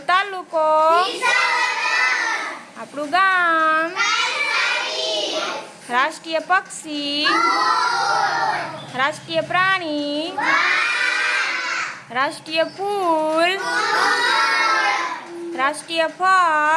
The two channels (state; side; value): identical; both; correlation 1.00